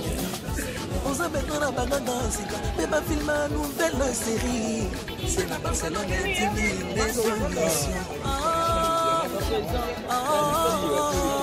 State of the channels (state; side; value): identical; both; correlation 1.00